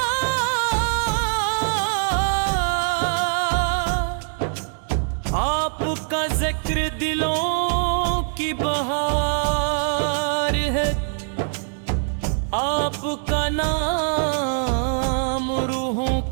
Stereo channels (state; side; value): silent; left; 64 dB below the other